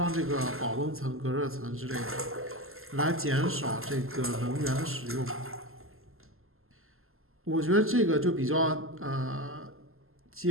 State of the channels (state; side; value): late; left; 0.62 ms